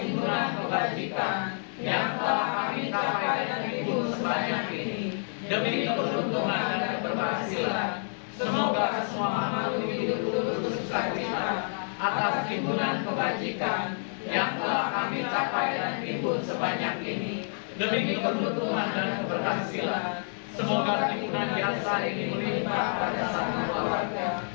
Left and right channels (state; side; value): silent; right; 59 dB below the other